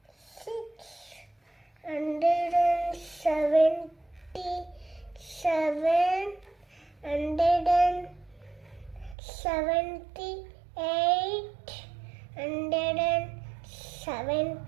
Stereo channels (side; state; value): left; drops out; at 9.2 s